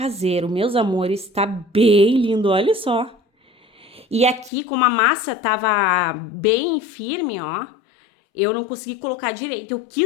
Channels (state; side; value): drops out; right; at 4.5 s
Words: meus amores, tá bem lindo, olha só. E aqui, como a massa tava bem firme, ó, eu não consegui colocar direito, eu